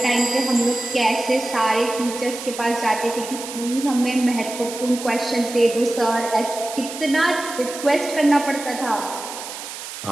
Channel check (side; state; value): right; noise; hiss, 10 dB below the sound